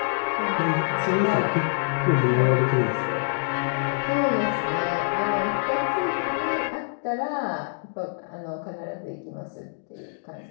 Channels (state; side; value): silent; right; digital silence